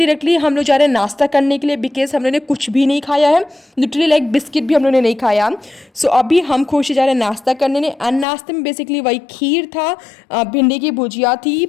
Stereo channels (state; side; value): drops out; right; at 8.2 s